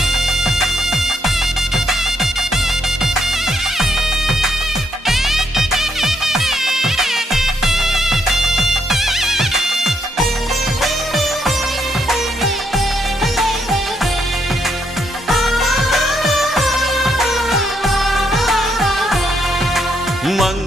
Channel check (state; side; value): normal; both; correlation 0.75